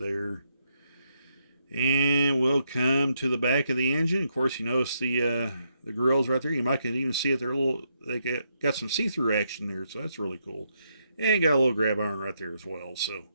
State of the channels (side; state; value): both; inverted; correlation -0.78